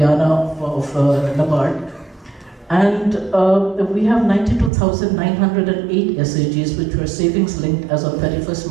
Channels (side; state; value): left; drops out; at 4.7 s